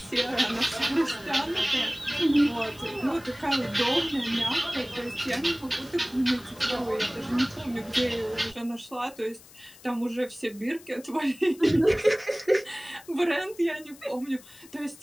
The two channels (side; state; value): left; noise; hiss, 22 dB below the sound